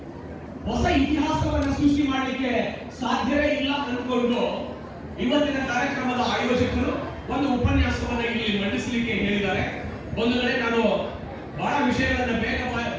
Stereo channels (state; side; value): identical; both; correlation 1.00